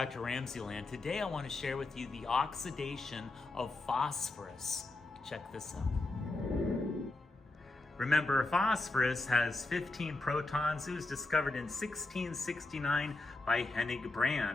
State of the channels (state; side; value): quieter; right; 3.0 dB